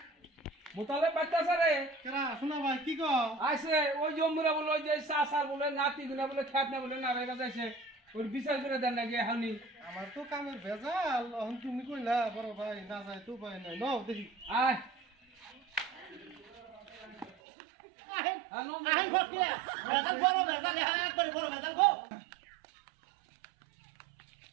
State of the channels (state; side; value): drops out; left; at 17.4 s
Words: মুতলব বাড়তে আসে রে কেরা শোনা ভাই কি কো আইসে ওই জম্মুরা বলে ওই যে সাসার বলে নাতি গুনা বলে খ্যাত না বলে না রেগা যাইছে ওর বিচার করে দেন নাকি এখনই আমার তো কামের ভেজাল এখন তুমি কইলা বড় ভাই না যায় তো ভাই নাই নাও দেখি আয় আহেন হ্যাঁ নো আহেন ভর্তি বেজাল বড় বেজাল হ্যাঁ একবারে বড় বেজাল গো